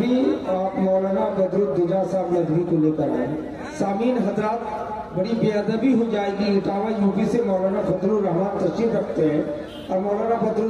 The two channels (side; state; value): right; noise; hum, 29 dB below the sound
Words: आप मौलाना बदरुद्दुजा साहब नदवी को लेकर आए। सामीन हजरात, बड़ी बेअदबी हो जाएगी, इटावा यूपी से मौलाना फजलुर रहमान तशरीफ रखते हैं और मौलाना